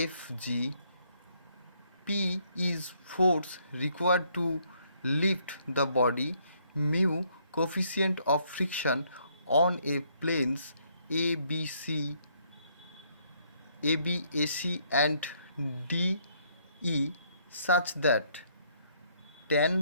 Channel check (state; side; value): inverted; both; correlation -0.69